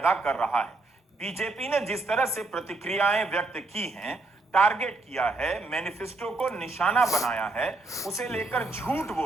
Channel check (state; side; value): quieter; left; 3.2 dB